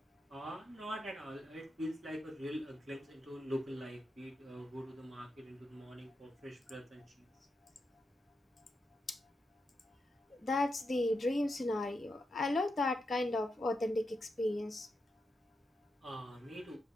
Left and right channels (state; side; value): normal; both; correlation 0.86